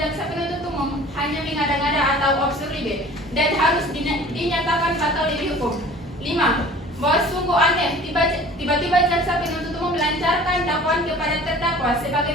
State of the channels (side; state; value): both; normal; correlation 0.46